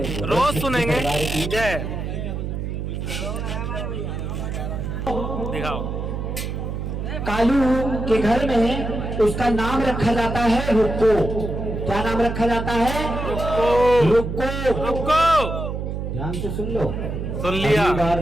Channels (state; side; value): noise; right; hum, 4 dB below the sound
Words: रोज सुनेंगे। जय। दिखाओ। कालू के घर में उसका नाम रखा जाता है रुक्को। क्या नाम रखा जाता है? रुक्को। रुको। ध्यान से सुन लो। सुन लिया। अगली बार